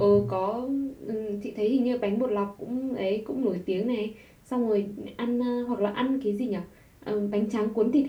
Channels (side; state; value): both; identical; correlation 1.00